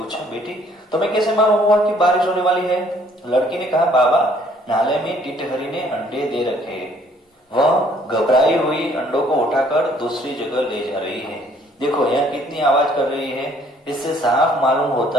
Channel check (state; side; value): normal; both; correlation 0.61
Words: बेटी तुम्हें कैसे मालूम हुआ कि बारिश होने वाली है? लड़की ने कहा, बाबा नाले में टिटहरी ने अंडे दे रखे, वह घबराई हुई अंडों को उठाकर दूसरी जगह ले जा रही है। देखो यह कितनी आवाज कर रही है, इससे साफ मालूम